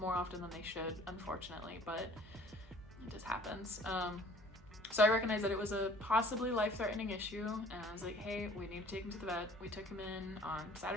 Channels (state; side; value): normal; both; correlation 0.52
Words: more often than they should, unfortunately, but it just happens. So I recognized that it was a possibly life-threatening issue, and I was like, hey, we need to take him to the vet. We took him in on